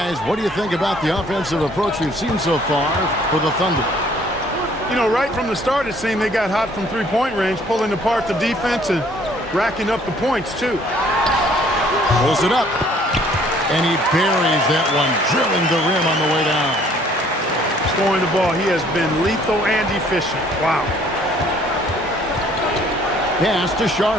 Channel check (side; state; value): both; normal; correlation 0.59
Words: what do you think about the offensive approach we've seen so far for the Thunder? You know, right from the start, it seemed they got hot from three-point range, pulling apart the defense and racking up the points, too. Pulls it up. And he buries that one, drilling the rim on the way down. Scoring the ball, he has been lethal and efficient. Wow. Pass to